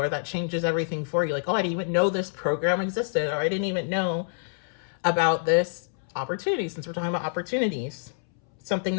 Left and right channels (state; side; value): silent; right; 60 dB below the other